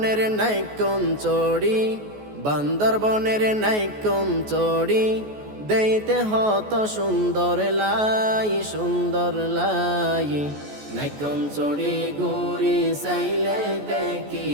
নাইকন চড়ি, বান্দরবনের নাইকন চড়ি, দেইতে হত সুন্দর লাই, সুন্দর লাই। নাইকন চড়ি ঘুরি চাইলে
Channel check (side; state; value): left; late; 14 ms